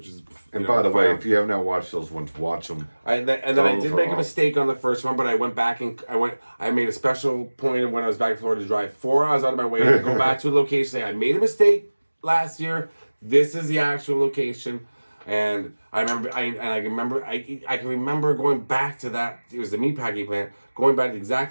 is. And by the way, if you have not watched those ones, watch them. And then I did make a mistake on the first one, but I went back and I made a special point of when I was back in Florida to drive 4 hours out of my way to go back to a location. Say I made a mistake last year. This is the actual location. And I can remember going back to that. It was the meatpacking plant. Going back to the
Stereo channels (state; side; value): inverted; both; correlation -1.00